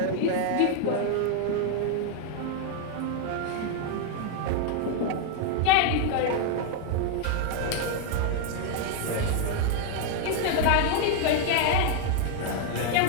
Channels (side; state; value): both; different; correlation 0.00